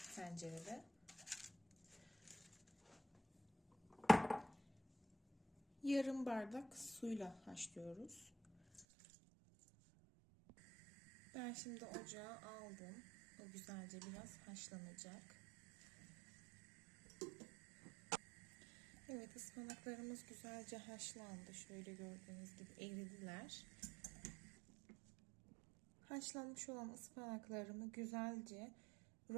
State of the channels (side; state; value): left; drops out; at 8.8 s